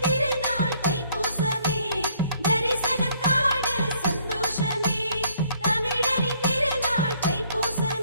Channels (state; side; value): inverted; both; correlation -0.64